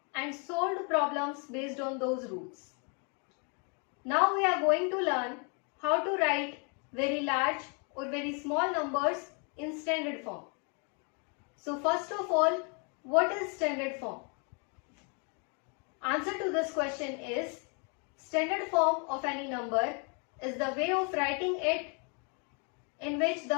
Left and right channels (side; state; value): right; quieter; 36.5 dB